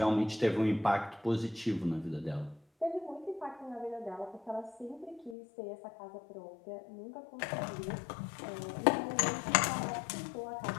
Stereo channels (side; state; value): right; drops out; at 5.4 s